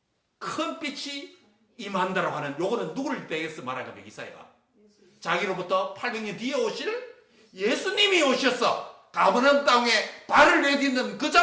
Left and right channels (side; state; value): both; identical; correlation 1.00